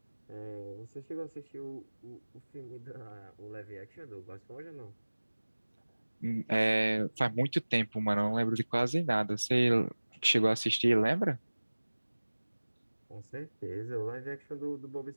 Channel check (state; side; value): inverted; both; correlation -1.00